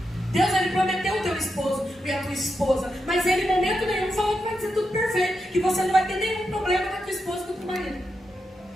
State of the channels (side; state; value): both; normal; correlation 0.86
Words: Deus, ele prometeu o teu esposo e a tua esposa, mas ele em momento nenhum falou que vai ser tudo perfeito, que você não vai ter nenhum problema com a tua esposa e com o teu marido.